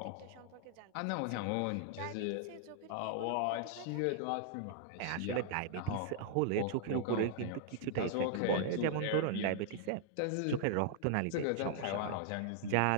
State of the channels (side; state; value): both; different; correlation -0.01